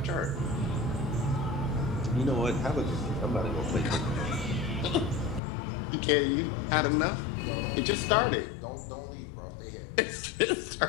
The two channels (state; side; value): drops out; right; at 5.4 s